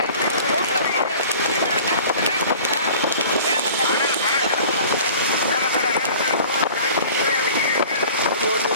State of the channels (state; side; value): inverted; both; correlation -0.45